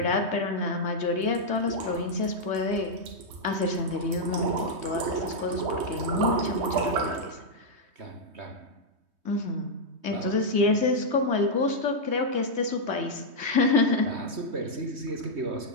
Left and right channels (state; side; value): late; left; 3.2 ms